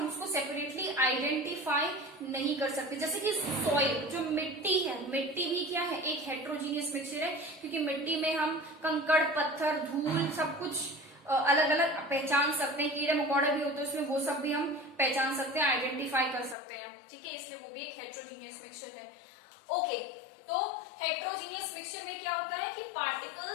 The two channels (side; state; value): right; drops out; at 16.6 s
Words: उसको सेपरेटली आइडेंटिफाई नहीं कर सकते। जैसे कि सॉइल, जो मिट्टी है, मिट्टी भी क्या है, एक हेट्रोजीनियस मिक्सचर है, क्योंकि मिट्टी में हम कंकड़, पत्थर, धूल सब कुछ अलग अलग पहचान सकते हैं। कीड़े मकोड़े भी होते हैं उसमें, वो सब भी हम पहचान सकते हैं, आइडेंटिफाई कर सकते हैं। ठीक है, इसलिए वो भी एक हेट्रोजीनियस मिक्सचर है। ओके, तो हेट्रोजीनियस मिक्सचर में क्या होता है कि